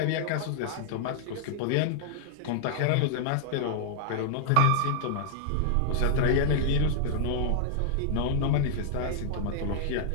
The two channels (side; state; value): both; different; correlation -0.01